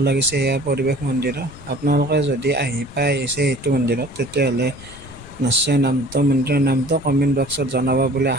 লাগিছে এয়া পৰিৱেশ মন্দিৰৰ। আপোনালোকে যদি আহিছে এইটো মন্দিৰত, তেতিয়াহ'লে নিশ্চয় মন্দিৰৰ নামটো কমেণ্ট বক্সত জনাব বুলি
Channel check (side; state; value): left; noise; rumble, 18 dB below the sound